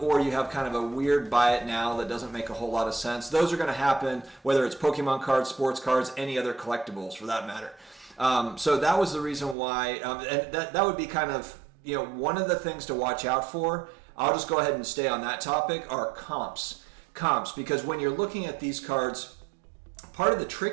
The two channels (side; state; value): left; drops out; at 9.6 s